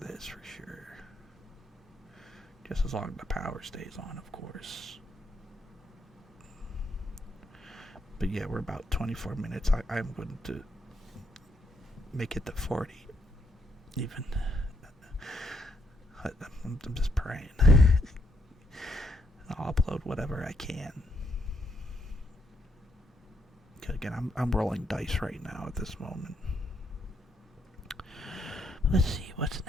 this for sure. Just as long as the power stays on, of course. But yeah, we're about 24 minutes. I'm going to make it to 40. Even. I'm just praying. I'll upload whatever I can. Again, I'm rolling dice right now at this moment. Let's see, what's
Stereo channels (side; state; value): both; normal; correlation 0.75